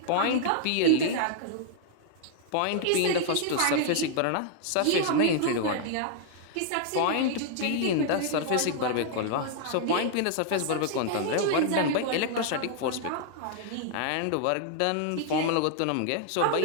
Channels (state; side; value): different; both; correlation -0.01